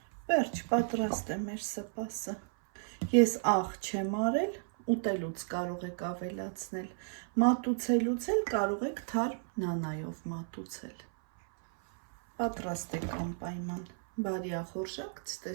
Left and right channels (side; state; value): left; silent; 55 dB below the other